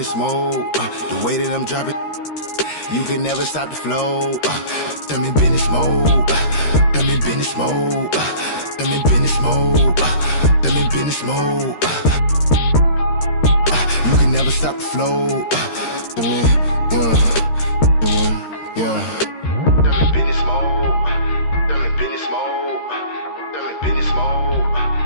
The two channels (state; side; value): late; right; 13 ms